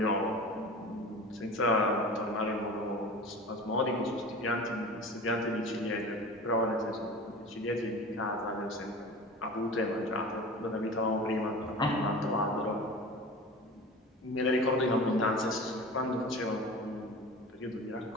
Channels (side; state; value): both; normal; correlation 0.36